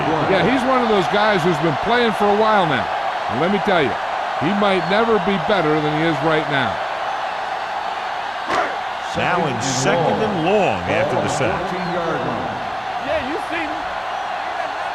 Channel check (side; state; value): both; identical; correlation 1.00